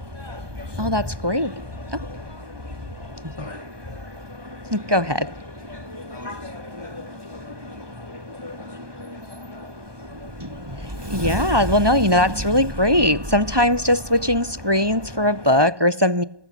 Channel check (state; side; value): late; left; 1.2 ms